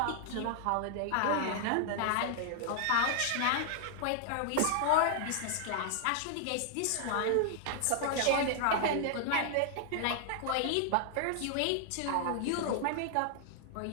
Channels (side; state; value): both; different; correlation 0.00